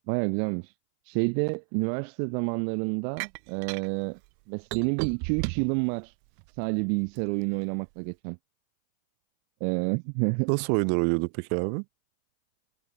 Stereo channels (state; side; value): silent; left; 59 dB below the other